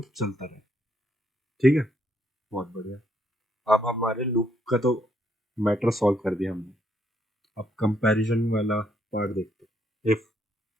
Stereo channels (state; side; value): normal; both; correlation 0.73